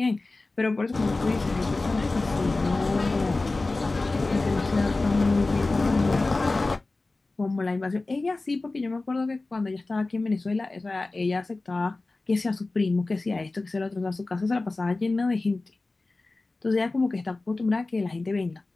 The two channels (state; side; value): quieter; right; 3.3 dB